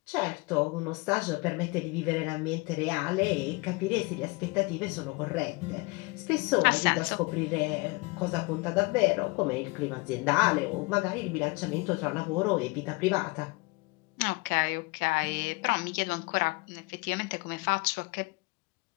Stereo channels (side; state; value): right; quieter; 26.0 dB